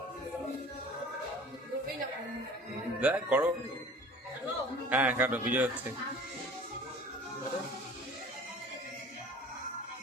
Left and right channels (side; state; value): both; normal; correlation 0.44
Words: দেখ করো। হ্যাঁ কাটো, বিজয় হচ্ছে।